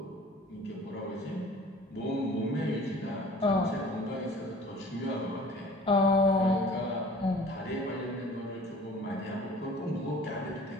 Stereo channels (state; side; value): normal; both; correlation 0.47